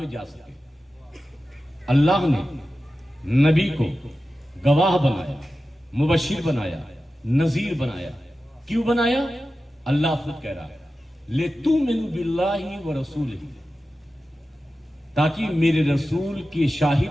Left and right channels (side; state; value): both; normal; correlation 0.94